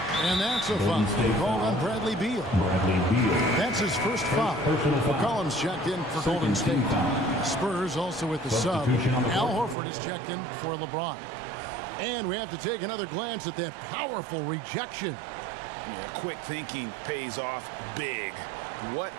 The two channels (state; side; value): drops out; left; at 9.8 s